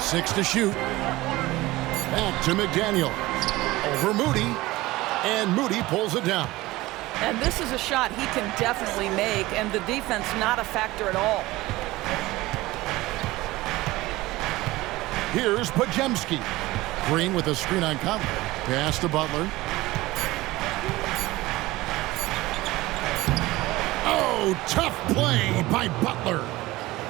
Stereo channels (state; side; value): quieter; left; 19.0 dB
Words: to shoot. Back to McDaniels. Over Moody. And Moody pulls it down. And this is a shot he can definitely make, and the defense not a factor at all. Here's Podziemski. Green with a screen on Conley. Pass to Butler. Oh, tough play by Butler.